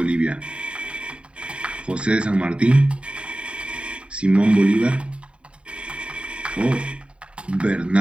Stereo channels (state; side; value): late; left; 0.057 ms